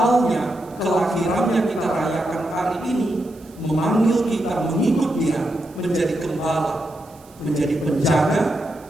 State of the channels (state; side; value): noise; right; hiss, 27 dB below the sound